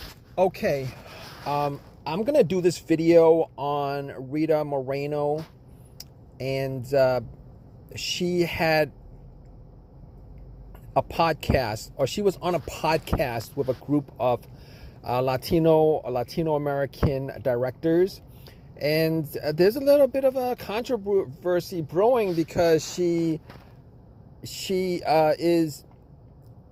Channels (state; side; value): identical; both; correlation 1.00